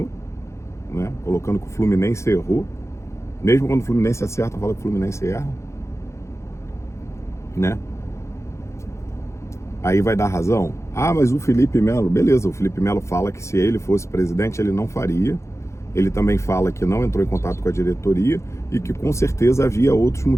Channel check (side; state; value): right; late; 0.14 ms